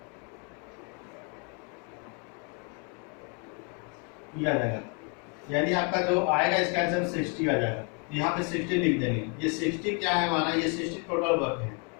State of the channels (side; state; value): right; quieter; 36.6 dB